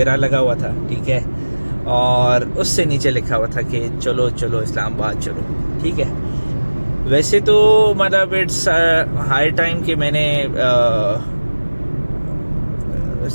लगा हुआ था, ठीक है। और उससे नीचे लिखा हुआ था कि चलो चलो इस्लामाबाद चलो, ठीक है। वैसे तो मतलब इट्स हाई टाइम कि मैंने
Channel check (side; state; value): both; inverted; correlation -1.00